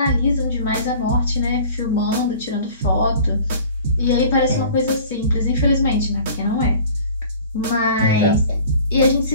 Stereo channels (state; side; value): inverted; both; correlation -0.45